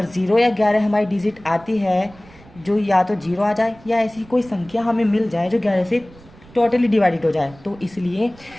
0 या 11 हमारी डिजिट आती है, जो या तो 0 आ जाए या ऐसी कोई संख्या हमें मिल जाए जो 11 से टोटली डिवाइडेड हो जाए, तो इसलिए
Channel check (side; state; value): right; noise; rumble, 23 dB below the sound